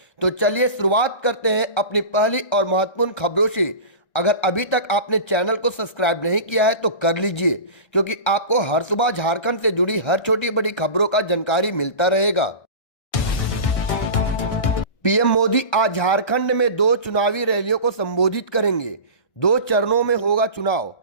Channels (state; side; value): late; right; 1.3 ms